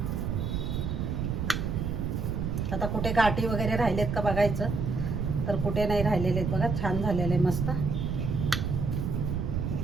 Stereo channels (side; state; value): right; noise; rumble, 1 dB below the sound